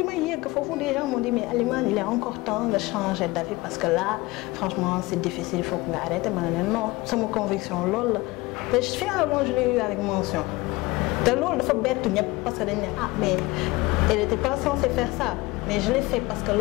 may yegg foofu des gens m'ont dit mais Alima il est encore temps de changer d'avis parce que là franchement c'est difficile il faut que nga arrêter ma ne non sama conviction loolu la te finalement je l'ai eu avec mention te loolu dafa bettu ñëpp parce que dañ ne ah mais elle était pas censée faire ça mais je l'ai fait parce que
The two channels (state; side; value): quieter; right; 21.6 dB